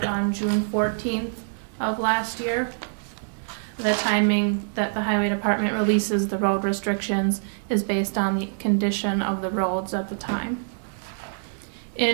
on June 14th of last year. The timing that the Highway Department releases the road restrictions is based on the condition of the roads at the time.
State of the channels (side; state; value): left; silent; digital silence